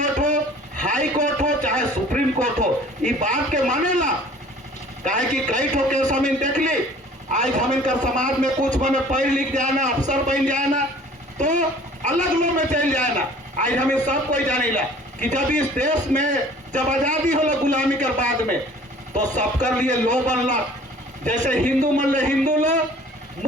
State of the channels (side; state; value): both; normal; correlation 0.50